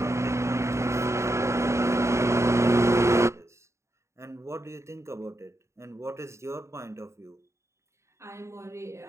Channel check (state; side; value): late; left; 0.14 ms